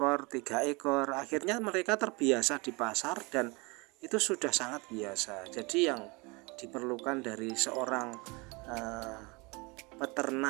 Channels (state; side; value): quieter; left; 27.2 dB